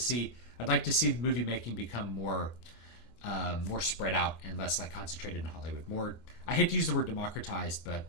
movie making become more spread out and less like concentrated in Hollywood. More, I hate to use the word democratized, but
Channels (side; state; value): right; late; 25 ms